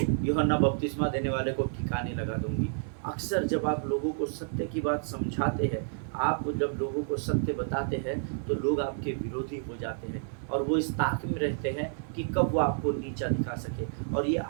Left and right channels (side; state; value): left; silent; 58 dB below the other